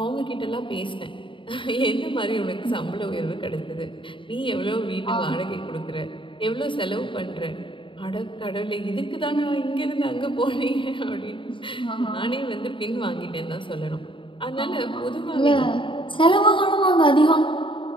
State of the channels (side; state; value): right; late; 0.24 ms